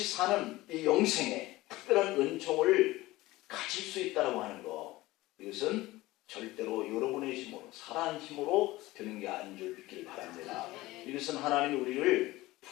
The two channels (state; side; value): quieter; right; 18.7 dB